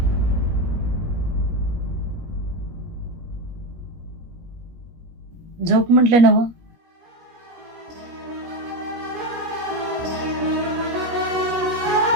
झोप म्हटलं ना.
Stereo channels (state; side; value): late; left; 17 ms